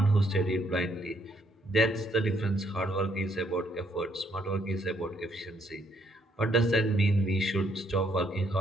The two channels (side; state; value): both; normal; correlation 0.70